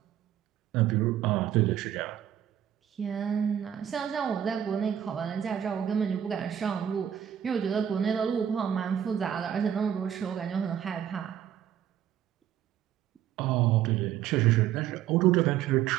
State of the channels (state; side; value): quieter; left; 10.1 dB